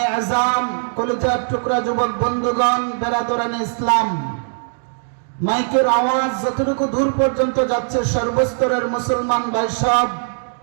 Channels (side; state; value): left; silent; digital silence